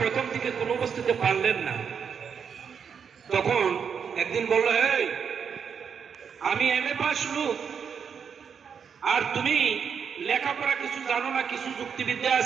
দিকে কোনো বস্তুতে পারলেন না, তখন একদিন বলল, এই আমি এমএ পাস লোক, আর তুমি লেখাপড়া কিছু জানো না, কিছু যুক্তিবিদ্যা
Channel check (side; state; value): left; quieter; 6.9 dB